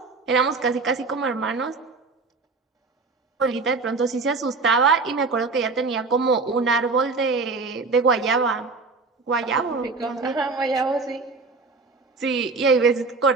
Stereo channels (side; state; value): left; quieter; 4.1 dB